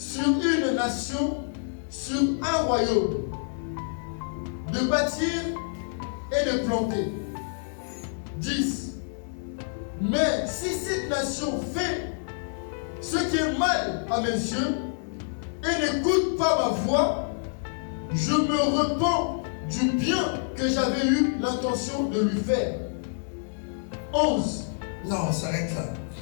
une nation, sur un royaume, de bâtir et de planter. 10. Mais si cette nation fait ce qui est mal à mes yeux et n'écoute pas ma voix, je me repens du bien que j'avais eu l'intention de lui faire. 11. Non, on s'arrête là.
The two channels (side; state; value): right; silent; digital silence